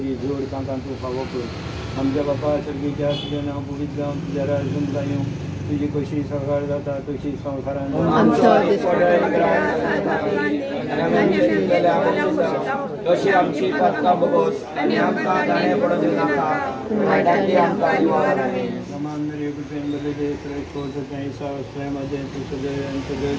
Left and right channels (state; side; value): identical; both; correlation 1.00